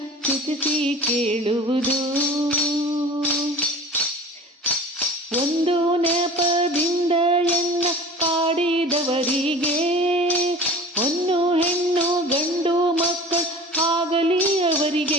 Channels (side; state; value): both; normal; correlation 0.40